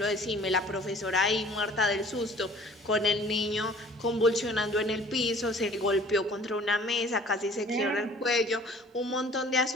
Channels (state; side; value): normal; both; correlation 0.50